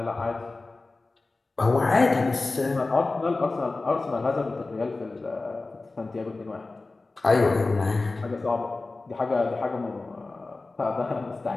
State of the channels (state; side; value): quieter; right; 3.4 dB